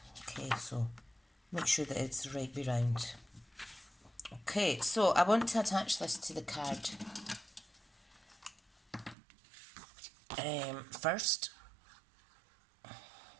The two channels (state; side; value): drops out; left; at 9.2 s